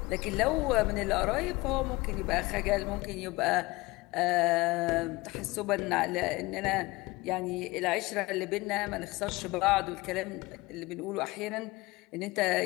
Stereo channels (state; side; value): quieter; right; 21.7 dB